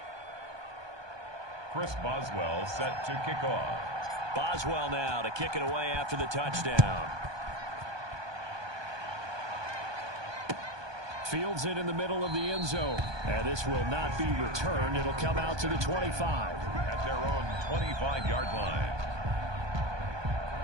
Chris Boswell set to kick off. Boswell now to kick it away after the touchdown. Fields it in the middle of the end zone. And this will not be returned. It'll come out to the 25. At their own 25-yard line.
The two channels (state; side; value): late; left; 1.2 ms